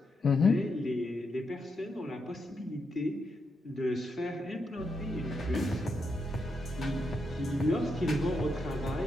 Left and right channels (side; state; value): both; normal; correlation 0.82